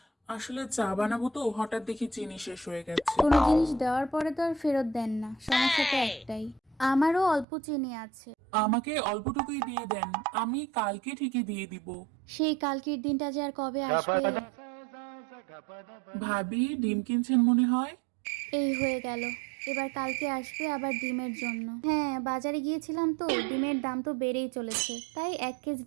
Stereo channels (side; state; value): left; drops out; at 7.5 s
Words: আসলে চা বানাবো তো, হঠাৎ দেখি চিনি শেষ হয়ে গেছে। কোনো জিনিস দেওয়ার পরে তো আর ফেরত দেন না। সমস্যা তো একটাই। আমারও অল্প চিনি আছে। আমাকে অল্পটুকুই দিয়ে দেন, আমি কালকে ঠিকই দিয়ে দিব। সেই কালকের দিনটা যে আর কবে আসবে। ভাবি ডিম কিনছেন মনে হয়। এই হয়ে গেল। এবার কালকে আসবে আবার ডিমের জন্য। হ্যাঁ, বাজারে গিয়েছিলাম তো, ডিমের দাম তো বেড়েই চলেছে। তাই 1 কেজি